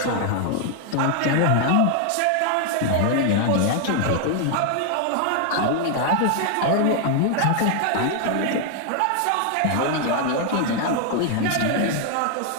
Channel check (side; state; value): both; different; correlation 0.00